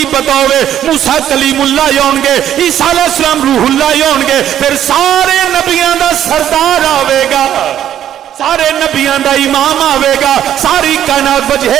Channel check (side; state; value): left; quieter; 10.8 dB